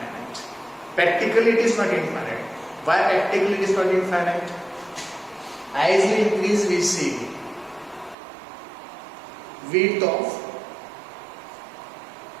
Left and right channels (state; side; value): drops out; left; at 8.2 s